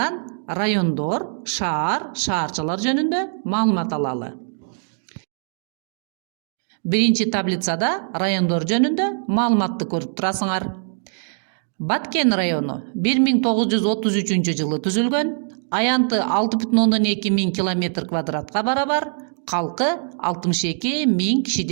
райондор, шаар, шаарчалар жөнүндө маалымат алалы. Биринчи таблицада райондор жөнүндө маалыматты көрүп турасыңар. Баткен району 1933 жылы түзүлгөн, аянты 6,2 миң км квадратка барабар, калкы 62.000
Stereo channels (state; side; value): silent; left; digital silence